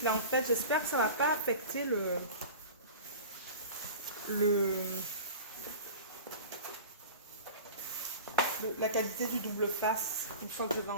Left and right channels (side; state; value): both; inverted; correlation -0.36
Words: là, en fait. J'espère que ça ne va pas affecter la qualité du double face. Une fois que je vais